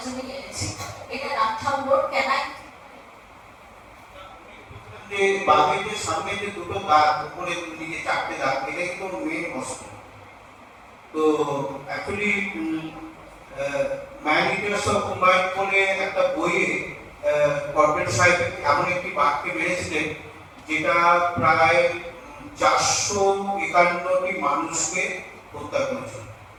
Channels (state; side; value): identical; both; correlation 1.00